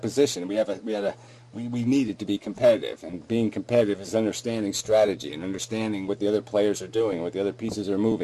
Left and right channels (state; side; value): identical; both; correlation 1.00